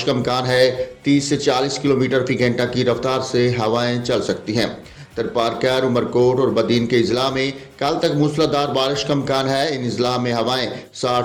का इम्कान है। 30 से 40 किलोमीटर फी घंटा की रफ्तार से हवाएं चल सकती हैं। तरपारकर, उमरकोट और बदीन के अजला में कल तक मूसलाधार बारिश का इम्कान है। इन अजला में हवाएं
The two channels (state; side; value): identical; both; correlation 1.00